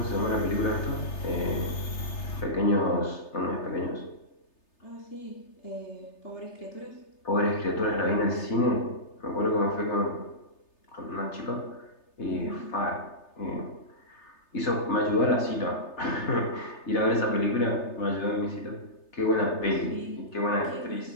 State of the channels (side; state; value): right; late; 3.3 ms